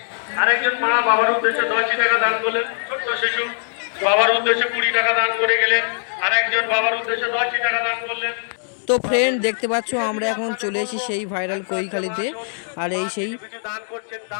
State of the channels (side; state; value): right; silent; digital silence